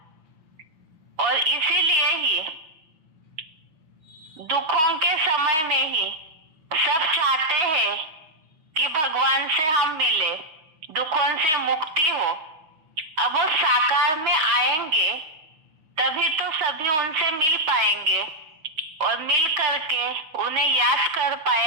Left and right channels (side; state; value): left; late; 6.4 ms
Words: और इसीलिए ही दुखों के समय में ही सब चाहते हैं कि भगवान से हम मिले, दुखों से मुक्ति हो। अब वो साकार में आएंगे तभी तो सभी उनसे मिल पाएंगे और मिल करके उन्हें याद कर